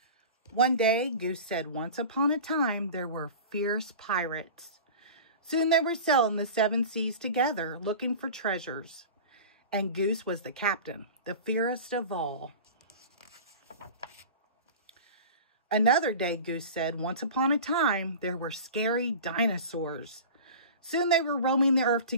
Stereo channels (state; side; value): inverted; both; correlation -0.35